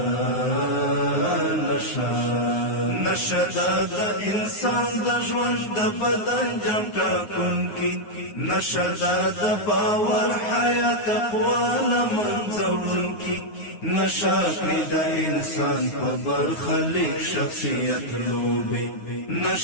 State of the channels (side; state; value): right; late; 9.6 ms